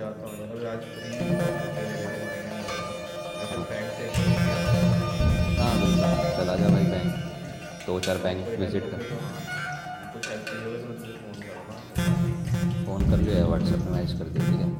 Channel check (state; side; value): identical; both; correlation 1.00